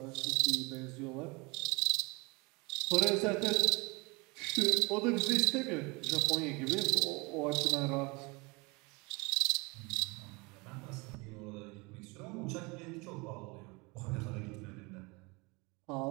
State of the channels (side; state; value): left; quieter; 26.8 dB